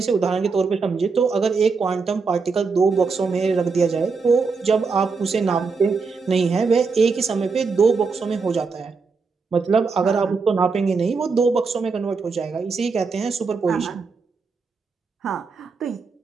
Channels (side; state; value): left; quieter; 4.7 dB